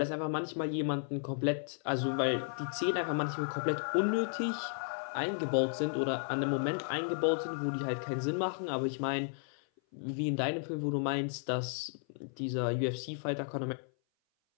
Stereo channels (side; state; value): right; silent; 55 dB below the other